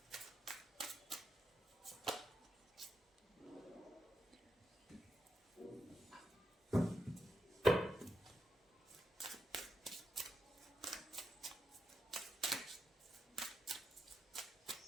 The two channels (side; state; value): both; normal; correlation 0.85